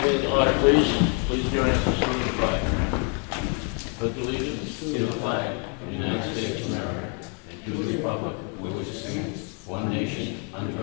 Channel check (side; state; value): right; quieter; 38.3 dB